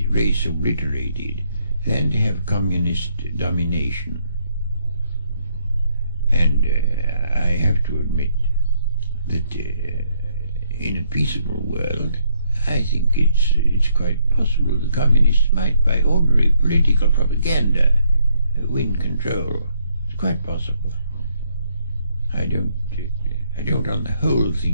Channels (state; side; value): inverted; both; correlation -0.71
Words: race obliterated than to have communist domination. And I have to admit that in a peaceable world, I think it's quite possible the communists might, by ordinary political propaganda, win control. It's quite possible. I don't on the whole